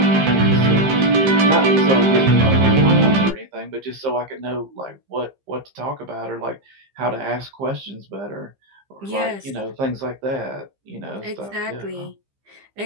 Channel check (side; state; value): left; late; 15 ms